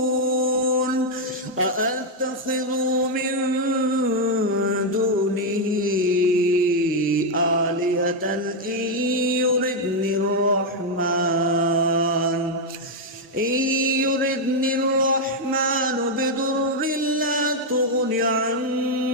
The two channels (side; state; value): both; normal; correlation 0.00